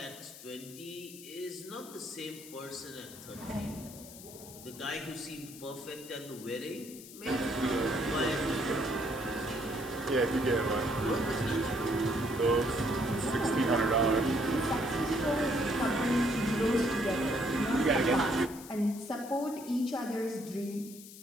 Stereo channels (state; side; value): noise; left; hiss, 16 dB below the sound